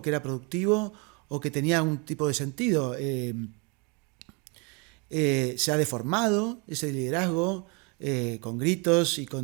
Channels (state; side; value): quieter; left; 32.1 dB